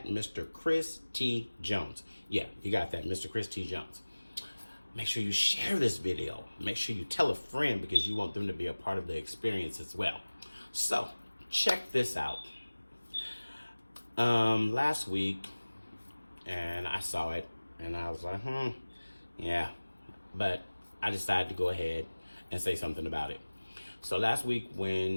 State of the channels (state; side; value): inverted; both; correlation -1.00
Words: Mr. Chris T. Jones. Yeah, you got that, Mr. Chris T. Jones. Make sure you share this video. Make sure you tell a friend because you want them to be a part of the experience as well. So, check this out. Last week, and I saw it, and I was like, yeah. But I decided to go ahead and say something about it. So last week